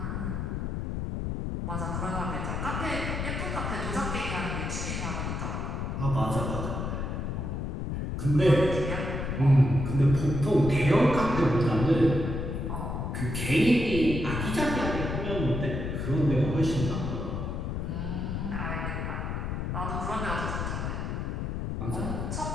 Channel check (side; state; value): left; noise; rumble, 3 dB below the sound